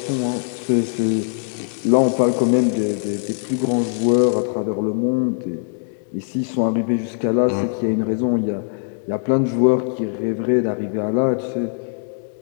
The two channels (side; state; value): right; silent; digital silence